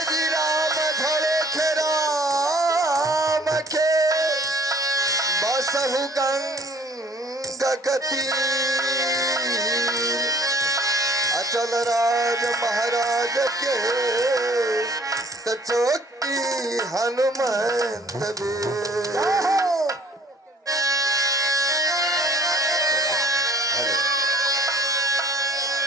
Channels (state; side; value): normal; both; correlation 0.57